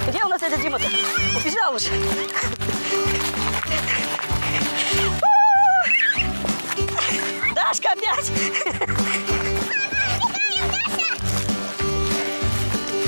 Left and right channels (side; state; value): both; inverted; correlation -1.00